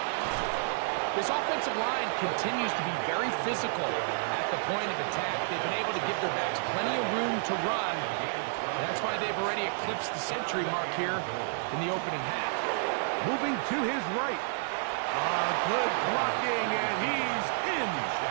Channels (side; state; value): left; silent; digital silence